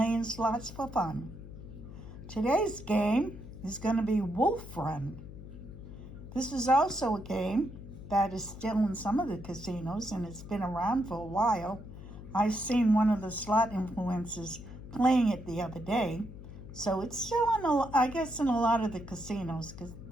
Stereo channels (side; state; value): left; noise; hum, 13 dB below the sound